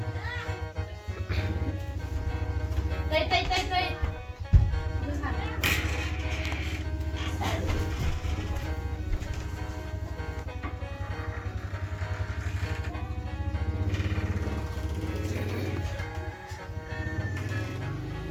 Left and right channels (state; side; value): identical; both; correlation 1.00